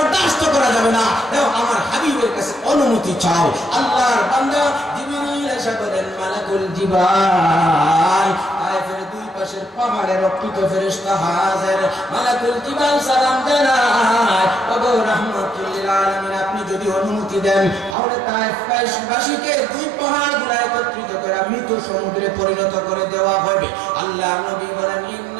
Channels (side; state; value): left; drops out; at 17.9 s